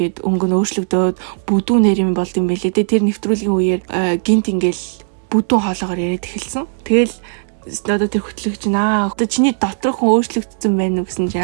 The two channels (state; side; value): silent; left; 66 dB below the other